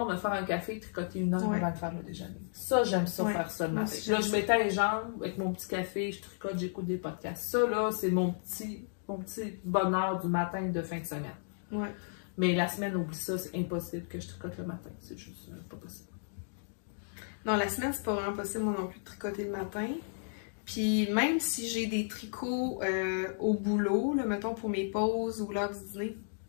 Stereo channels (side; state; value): right; silent; digital silence